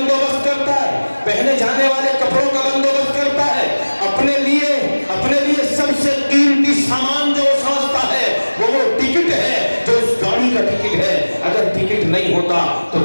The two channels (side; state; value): both; inverted; correlation -1.00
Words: کرتا ہے، پہنے جانے والے کپڑوں کا بندوبست کرتا ہے، اپنے لیے سب سے قیمتی سامان جو سمجھتا ہے وہ ٹکٹ ہے، جو اس گاڑی کا ٹکٹ ہے۔ اگر ٹکٹ نہیں ہوتا تو